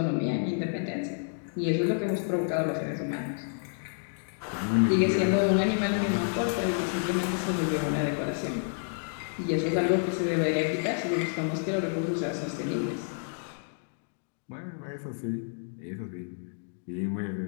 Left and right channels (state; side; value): silent; right; digital silence